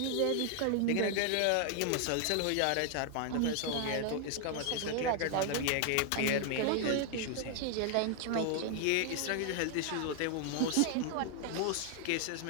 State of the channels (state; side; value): different; both; correlation 0.00